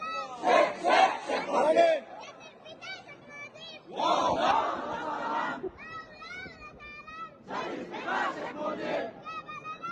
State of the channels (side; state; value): both; identical; correlation 1.00